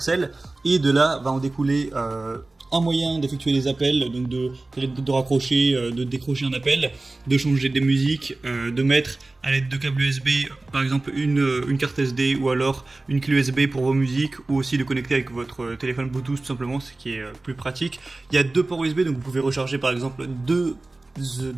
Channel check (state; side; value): quieter; left; 3.1 dB